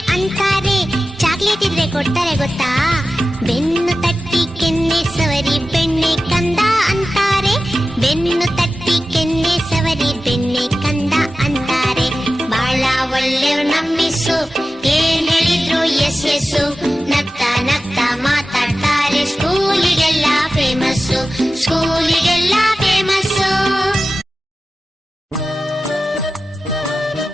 ಅಂತಾರೆ, ಚಾಕ್ಲೇಟ್ ಇದ್ರೆ ಕೊಡ್ತಾರೆ ಗೊತ್ತಾ. ಬೆನ್ನು ತಟ್ಟಿ ಕೆನ್ನೆ ಸವರಿ ಬೆಣ್ಣೆ ಕಂದ ಅಂತಾರೆ, ಬೆನ್ನು ತಟ್ಟಿ ಕೆನ್ನೆ ಸವರಿ ಬೆಣ್ಣೆ ಕಂದ ಅಂತಾರೆ. ಬಾಳ ಒಳ್ಳೆಯವ್ರ್ ನಮ್ಮಿಸು, ಏನ್ ಹೇಳಿದ್ರು ಎಸ್ ಎಸ್ಸು, ನಗ್ತಾ ನಗ್ತಾ ಮಾತಾಡ್ತಾರೆ, ಸ್ಕೂಲಿಗೆಲ್ಲ ಫೇಮಸ್ಸು, ಸ್ಕೂಲಿಗೆಲ್ಲ ಫೇಮಸ್ಸು.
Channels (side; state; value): both; normal; correlation 0.94